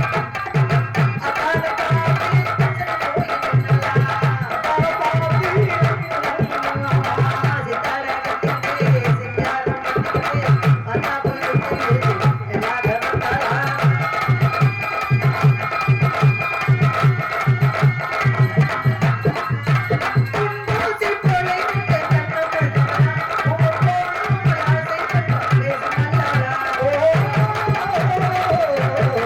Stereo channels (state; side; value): identical; both; correlation 1.00